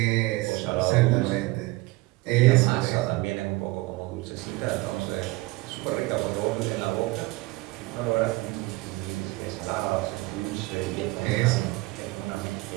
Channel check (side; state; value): left; quieter; 21.3 dB